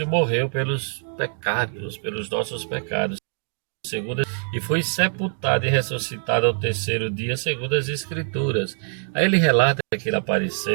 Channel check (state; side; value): silent; left; 63 dB below the other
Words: morreu pelos pecados, pelos nossos pecados, e foi sepultado e ressuscitado ao terceiro dia, segundo as Escrituras. Aí ele relata que ele